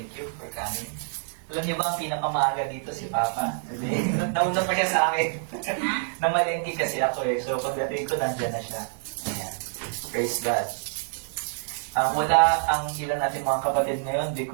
you for coming. Alam niyo ba ang pinakamaaga dito si Papa? Hindi. Nauna pa siya sa akin. Namalengke kasi ako eh. So pagdating ko, nandyan na siya. Ayan. Praise God. Wala ang ilan natin mga kapatid ngayon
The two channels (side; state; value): left; silent; digital silence